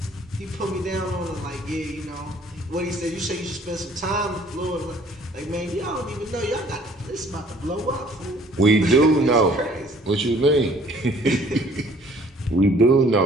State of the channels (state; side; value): normal; both; correlation 0.56